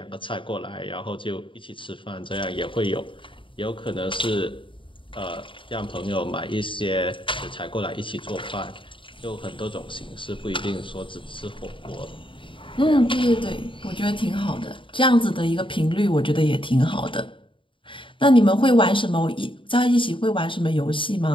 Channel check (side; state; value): right; late; 0.25 ms